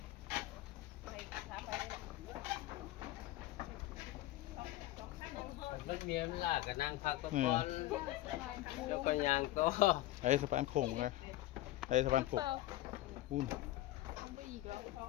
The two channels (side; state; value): right; quieter; 16.1 dB